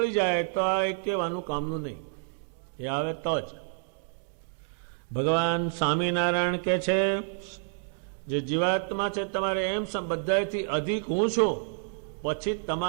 જાય તો આ એક કહેવાનું કામનું નહીં, એ આવે તો જ. ભગવાન સ્વામિનારાયણ કે છે જે જીવાત્મા છે તમારે એમ બધાથી અધિક હું છું, પછી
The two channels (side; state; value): left; silent; digital silence